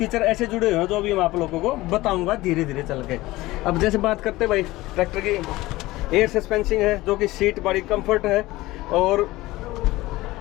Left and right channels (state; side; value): quieter; right; 18.8 dB